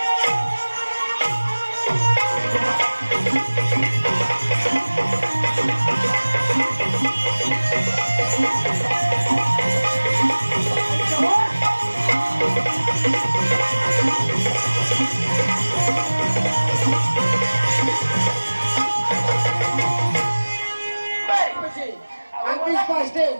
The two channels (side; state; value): both; inverted; correlation -1.00